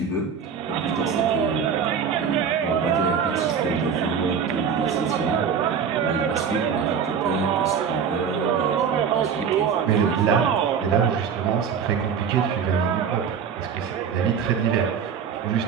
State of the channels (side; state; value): left; quieter; 7.0 dB